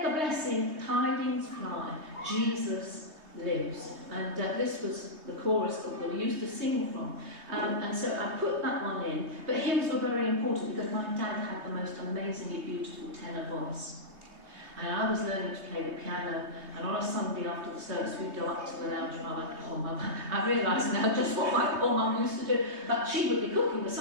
the blessed tidings fly, Jesus lives." And this was the chorus that we used to sing from. And so I put that one in. But hymns were very important because my dad had the most amazingly beautiful tenor voice. And I was learning to play the piano, and on a Sunday after the service we'd go up to the lounge and I went, "Oh Mum," I realise now just what my poor Mum used to do, but she would be cooking the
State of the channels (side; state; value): left; late; 3.2 ms